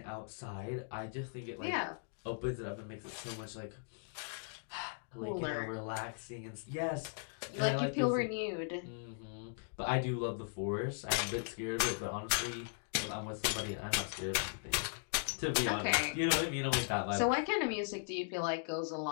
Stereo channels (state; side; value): silent; right; digital silence